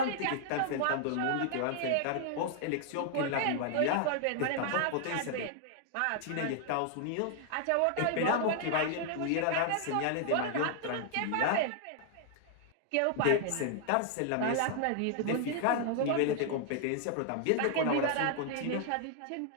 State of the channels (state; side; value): different; both; correlation 0.00